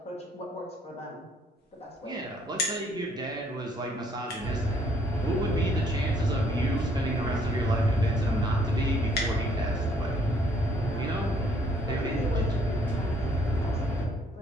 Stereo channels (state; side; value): normal; both; correlation 0.65